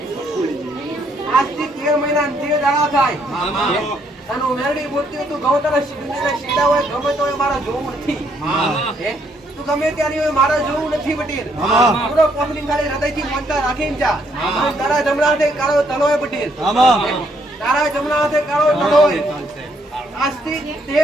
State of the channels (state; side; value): normal; both; correlation 0.71